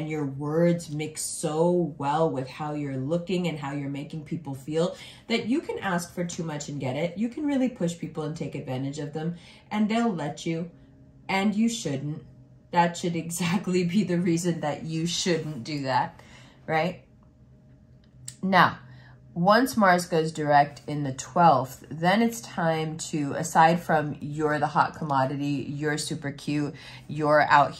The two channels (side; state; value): both; identical; correlation 1.00